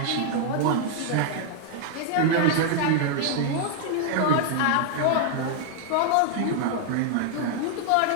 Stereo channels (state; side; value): different; both; correlation 0.00